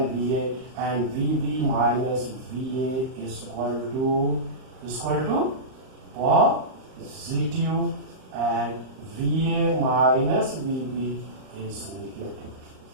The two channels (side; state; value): left; late; 38 ms